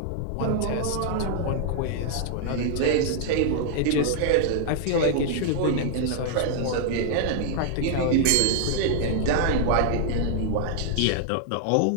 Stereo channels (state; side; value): different; both; correlation -0.01